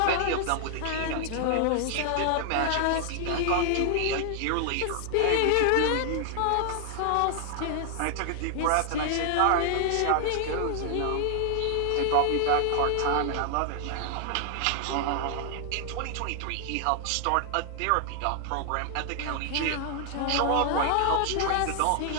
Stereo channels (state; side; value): different; both; correlation 0.00